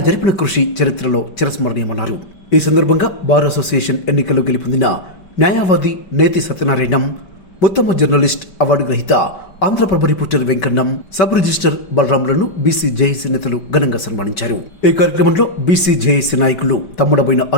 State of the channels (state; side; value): late; right; 5.2 ms